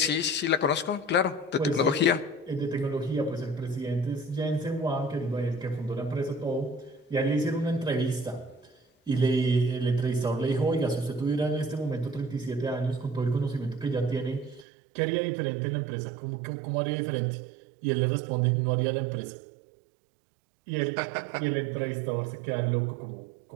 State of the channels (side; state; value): left; drops out; at 14.7 s